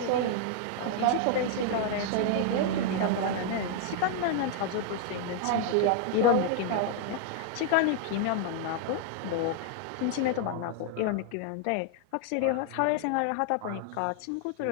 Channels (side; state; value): both; different; correlation 0.00